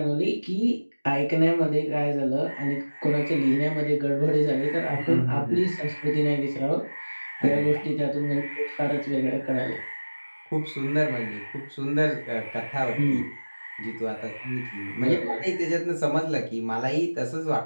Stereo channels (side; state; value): both; inverted; correlation -1.00